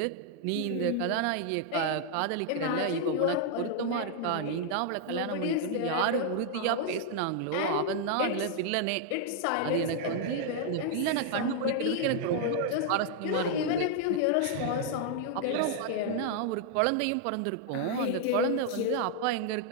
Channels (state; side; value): different; both; correlation 0.00